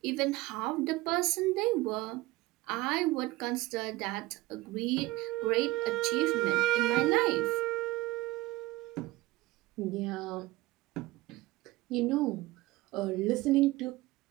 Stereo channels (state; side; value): quieter; left; 18.9 dB